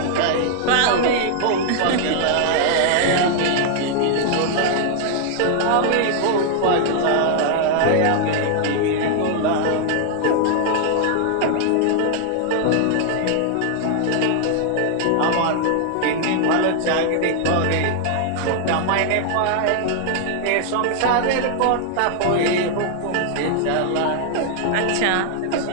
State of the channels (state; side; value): different; both; correlation 0.00